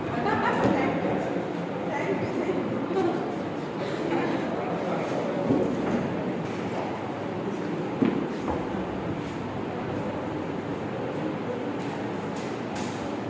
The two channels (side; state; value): both; identical; correlation 1.00